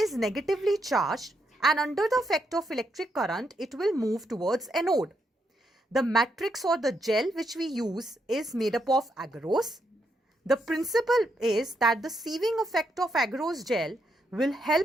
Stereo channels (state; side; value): normal; both; correlation 0.79